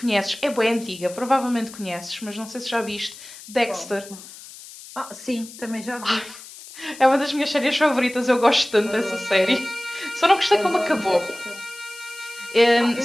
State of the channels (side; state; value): left; noise; hiss, 17 dB below the sound